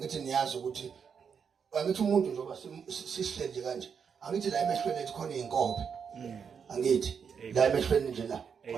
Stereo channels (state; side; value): quieter; left; 6.7 dB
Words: niyazi ukuthi angithi umuntu njengoba sisihleli kanje angithi la emehlweni ethu khona izinkobe. Angithi la emehlweni nje la